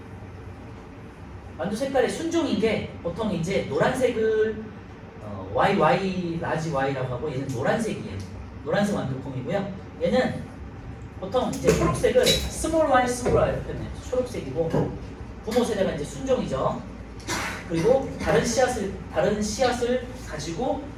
완두 색깔의 순종인 게 보통 이제 노란색을 YY 라지 Y라고 하고 얘는 노란색이에요. 노란색 완두콩이고요. 얘는 보통 이제 초록색을 스몰 y 이렇게 표현해요. 초록색이고 부모 세대가 이제 순종이죠. 그리고 다른 씨앗을 가지고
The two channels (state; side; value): identical; both; correlation 1.00